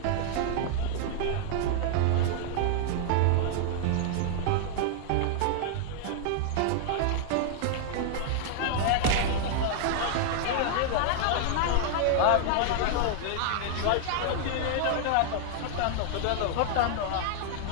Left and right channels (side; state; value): both; different; correlation -0.01